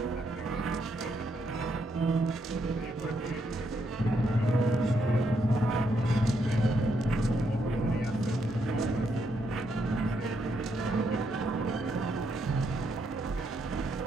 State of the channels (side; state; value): both; normal; correlation 0.77